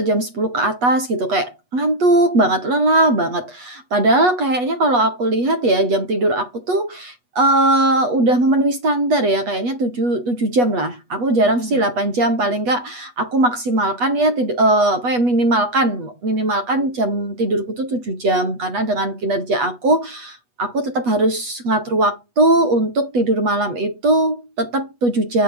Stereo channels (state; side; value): late; left; 8.2 ms